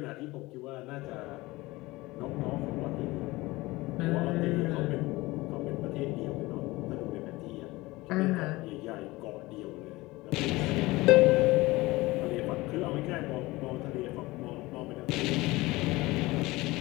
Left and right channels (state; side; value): quieter; right; 20.7 dB